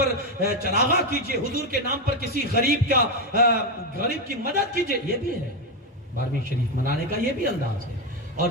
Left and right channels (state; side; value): normal; both; correlation 0.08